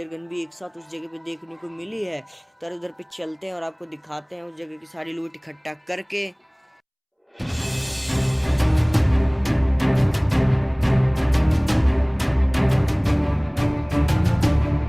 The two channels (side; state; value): both; identical; correlation 1.00